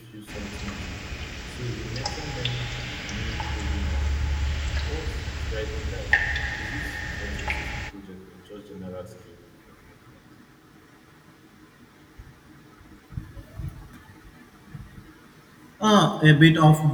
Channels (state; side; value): identical; both; correlation 1.00